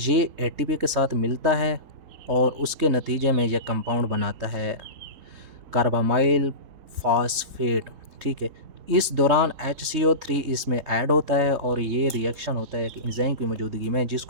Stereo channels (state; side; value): late; left; 3.7 ms